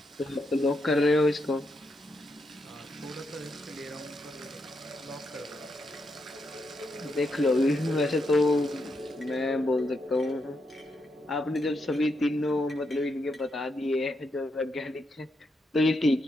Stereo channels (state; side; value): normal; both; correlation 0.82